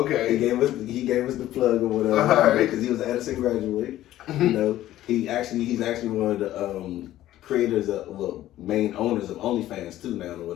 okay. He gave us the plug or whatever because he was an Edison graduate. You know. He's actually one of the creators main owners of OnlyFans too now or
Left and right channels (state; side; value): quieter; right; 13.9 dB